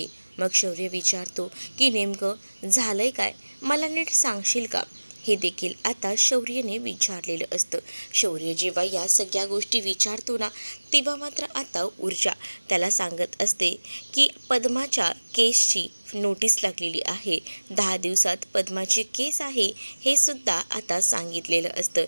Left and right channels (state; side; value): inverted; both; correlation -1.00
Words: मग शौर्य विचारतो की नेमकं झालंय काय, मला नीट सांगशील का? हे देखील आता शौर्यने विचारलेलं असतं. शौर्य जेव्हा या सगळ्या गोष्टी विचारतो ना, तेव्हा मात्र आता ऊर्जा त्याला सांगत असते की पद्माच्या केसची नोटीस लागलेली आहे. 10 दिवसात पद्माची केस आहे हे सुद्धा आता सांगितलेलं असतं.